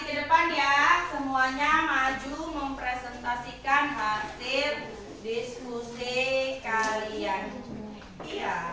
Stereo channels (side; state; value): both; identical; correlation 1.00